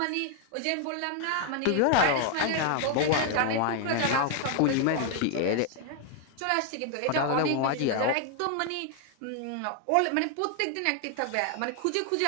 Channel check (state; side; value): different; both; correlation 0.00